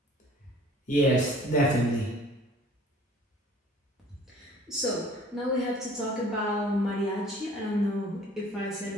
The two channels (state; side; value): normal; both; correlation 0.51